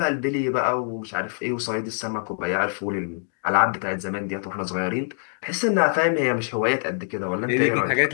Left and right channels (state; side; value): silent; right; digital silence